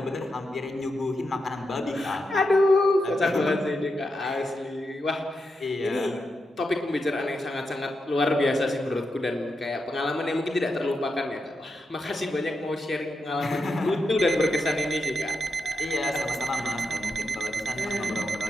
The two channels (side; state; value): both; normal; correlation 0.86